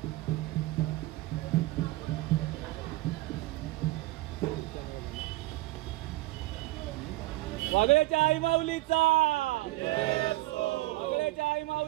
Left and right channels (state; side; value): quieter; left; 19.0 dB